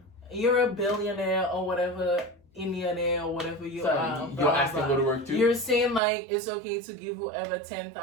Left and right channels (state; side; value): drops out; left; at 6.0 s